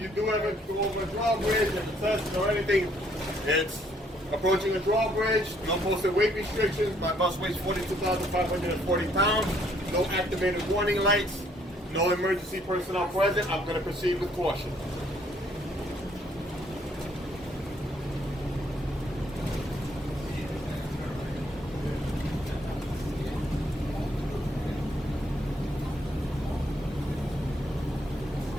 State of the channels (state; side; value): normal; both; correlation 0.66